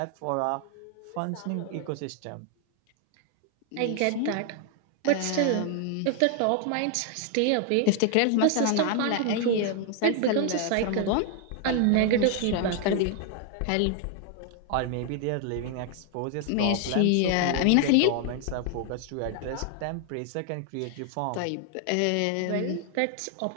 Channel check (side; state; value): both; different; correlation 0.00